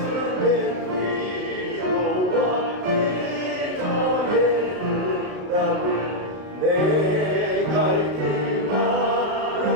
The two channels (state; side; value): late; left; 33 ms